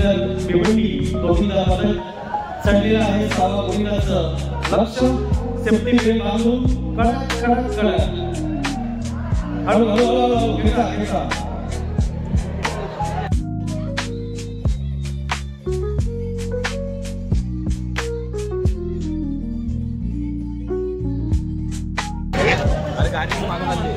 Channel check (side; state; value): both; identical; correlation 1.00